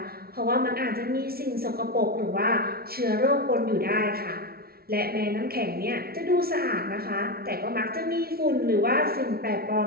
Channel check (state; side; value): late; left; 0.44 ms